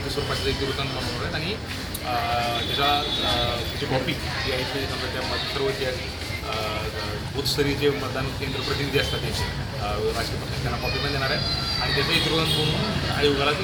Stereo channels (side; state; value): both; identical; correlation 1.00